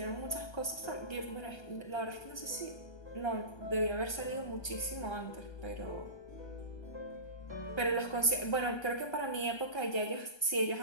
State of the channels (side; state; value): right; late; 1.3 ms